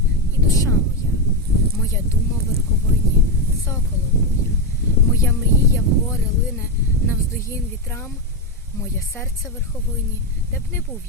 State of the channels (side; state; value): both; normal; correlation 0.08